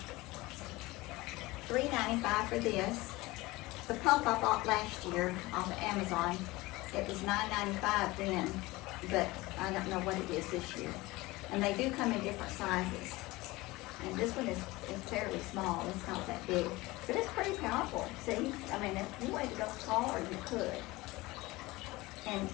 $3.95 for this. The pump I bought last year off of Amazon, it was $9.95 then, but I don't know what it is this year. And they do come in different sizes. And this one is fairly small, it's not that big. But it's pretty powerful, see? I mean, if you wanted to go taller, you could. And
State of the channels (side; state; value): right; quieter; 20.7 dB